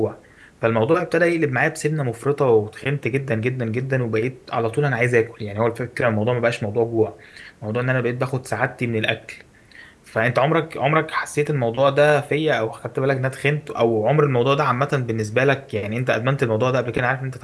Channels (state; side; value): identical; both; correlation 1.00